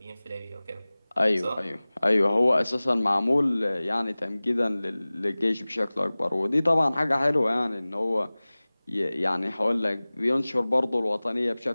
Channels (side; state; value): both; inverted; correlation -0.99